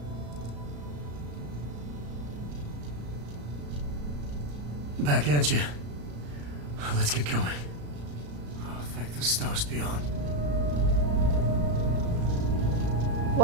Back at you. Let's get going. Oh, thank the stars beyond.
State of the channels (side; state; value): left; late; 34 ms